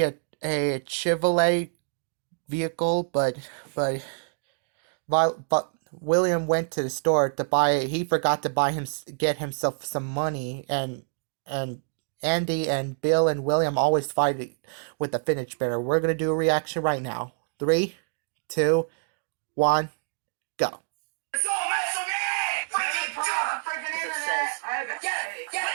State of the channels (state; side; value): silent; left; digital silence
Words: a Chevrolet vehicle, but William went to the store to buy. He forgot to get himself some money, and Andy and Bill and William always fight with the fidget spinner. We're gonna do a reaction right now. Three, two, one, go.